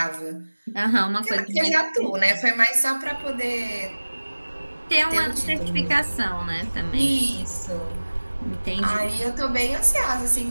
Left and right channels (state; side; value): inverted; both; correlation -1.00